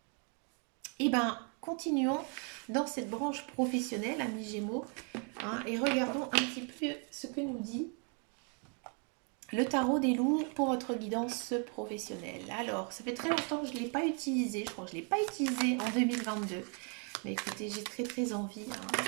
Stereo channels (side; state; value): left; quieter; 38.4 dB